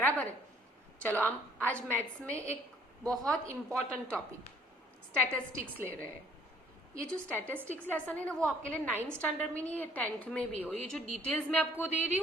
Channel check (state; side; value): normal; both; correlation 0.59